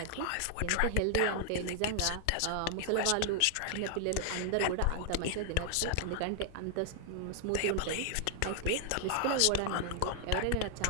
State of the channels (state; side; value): different; both; correlation 0.00